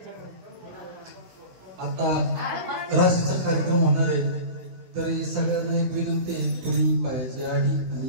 आता राशीचा कार्यक्रम होणार आहे तरी सगळ्यांना एक विनंती आहे पुरी पायाची आडी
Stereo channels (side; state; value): left; late; 16 ms